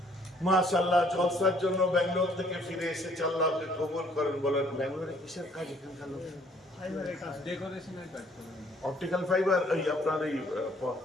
মাশাআল্লাহ, জলসার জন্য ব্যাঙ্গালোর থেকে ফিরে এসেছে, আল্লাহ আপনি কবুল করেন বলেন। ব্যাঙ্গালোরে কিসের কাজ? এখানকার লোক ফাইবারের কাজ, ডেকোরেশনের কাজ করে। অপটিক্যাল ফাইবার, এই আপনার এই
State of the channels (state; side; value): normal; both; correlation 0.62